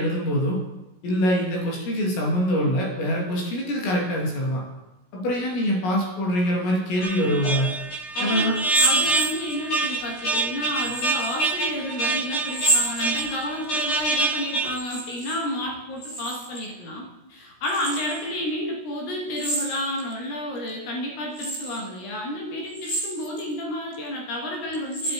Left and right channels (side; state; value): right; late; 16 ms